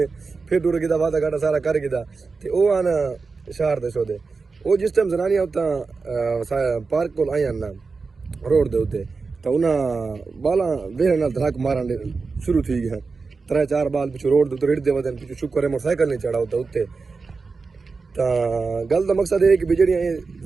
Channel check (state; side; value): quieter; left; 4.4 dB